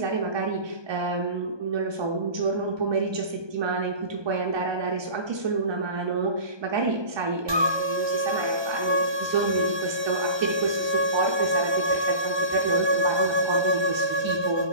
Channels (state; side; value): late; left; 1.2 ms